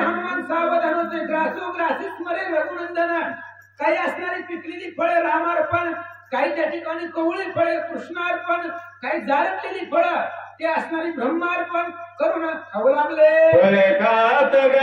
सावधान होते. ग्रासो ग्रासी स्मरे रघुनंदन. काही असणारी पिकलेली फळे रामार्पण, काही त्या ठिकाणी कवळी फळे कृष्णार्पण, काही जारटलेली फळं ते असणारी ब्रह्मार्पण करून खाऊ लागले. फळे खात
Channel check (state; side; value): identical; both; correlation 1.00